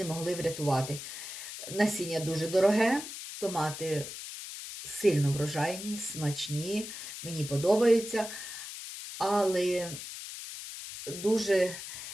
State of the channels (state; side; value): noise; left; hiss, 9 dB below the sound